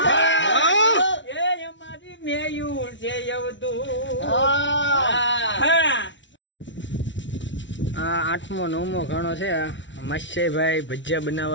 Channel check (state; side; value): late; right; 0.54 ms